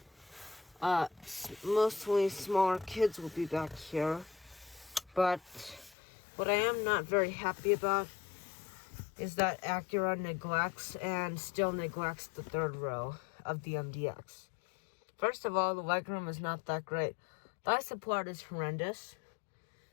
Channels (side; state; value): right; drops out; at 6.0 s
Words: Mostly smaller kids will be back here. But what I am not very happy about is that Acura neglects the third row of the MDX. First of all, the legroom is not that great. Thigh support is horrendous,